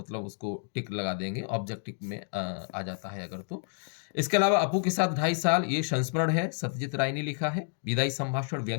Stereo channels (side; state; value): right; silent; digital silence